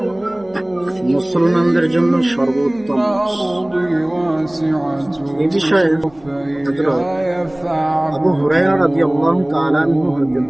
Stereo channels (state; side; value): noise; left; hum, 28 dB below the sound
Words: মুসলমানদের জন্য সর্বোত্তম মাস। এ বিষয়ে হযরত আবু হুরায়রা রাদিয়াল্লাহু তাআলা আনহু হতে